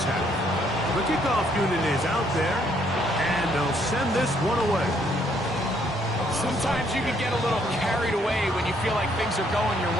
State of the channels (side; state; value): both; normal; correlation 0.68